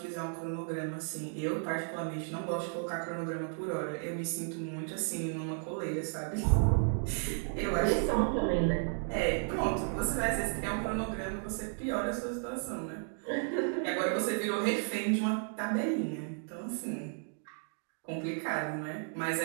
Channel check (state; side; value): silent; left; 55 dB below the other